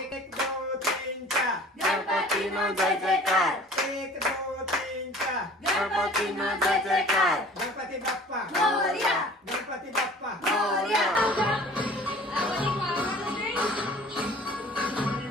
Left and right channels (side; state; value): both; normal; correlation 0.47